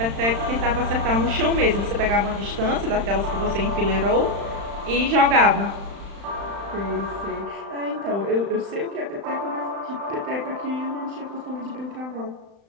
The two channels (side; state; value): left; late; 35 ms